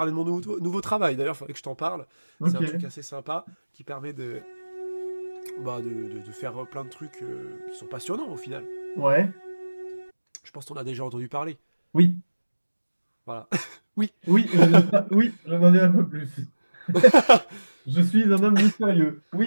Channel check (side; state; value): both; inverted; correlation -1.00